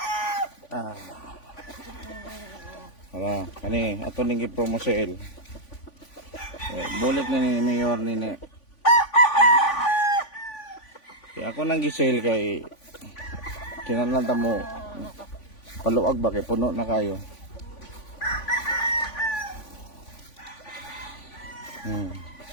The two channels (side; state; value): right; late; 3.5 ms